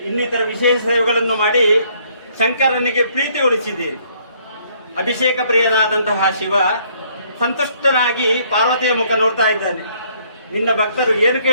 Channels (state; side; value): inverted; both; correlation -0.65